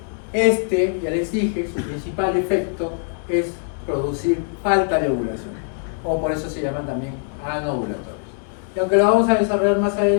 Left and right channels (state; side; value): silent; right; 64 dB below the other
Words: ya les dije, su principal efecto es producir falta de ovulación, o por eso se llaman también anovulatorios. Y aunque lo vamos a desarrollar más